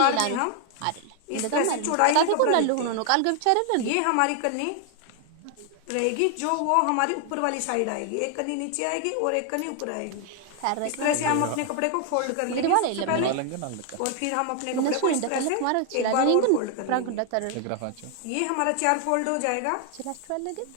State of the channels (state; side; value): different; both; correlation 0.00